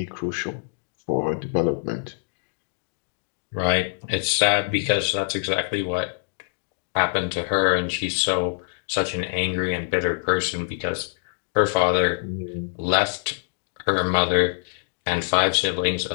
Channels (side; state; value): right; silent; digital silence